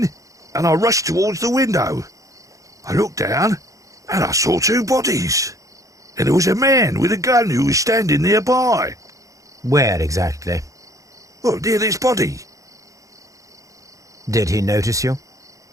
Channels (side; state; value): left; late; 0.16 ms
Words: and I rushed towards the window. I looked down and I saw 2 bodies. And there was a man with a gun who was standing nearby. Where exactly? Well, near this body. Did he notice you?